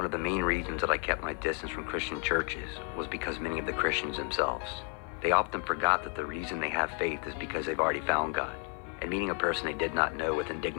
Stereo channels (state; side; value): quieter; right; 37.7 dB